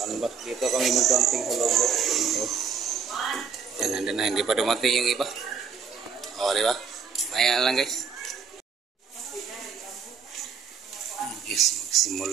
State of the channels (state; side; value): quieter; left; 6.2 dB